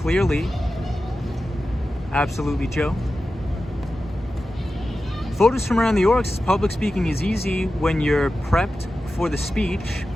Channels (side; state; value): both; normal; correlation 0.93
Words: Absolutely, Joe. Photos from around the York says, public speaking is easy when you're prepped for the speech.